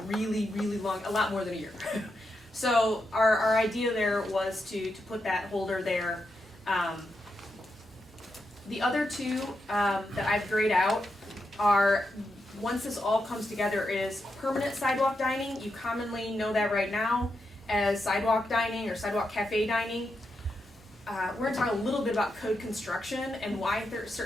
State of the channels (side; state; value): both; normal; correlation 0.85